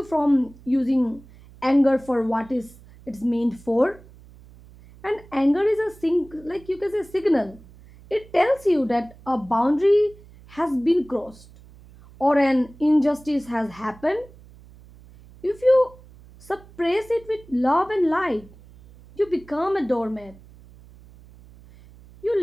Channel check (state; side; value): noise; right; hum, 23 dB below the sound